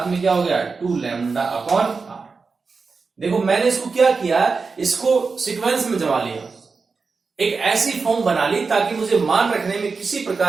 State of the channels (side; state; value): left; quieter; 4.6 dB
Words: में क्या हो गया 2 लैम्डा अपॉन r। देखो मैंने इसको क्या किया, इसको सीक्वेंस में जमा लिया, एक ऐसी फॉर्म बना ली ताकि मुझे मान रखने में किसी